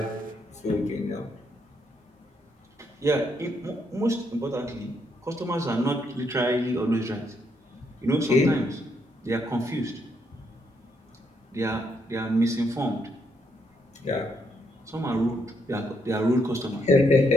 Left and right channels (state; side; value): normal; both; correlation 0.75